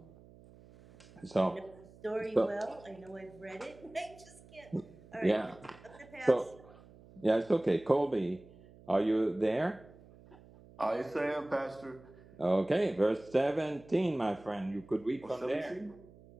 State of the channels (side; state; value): right; noise; hum, 22 dB below the sound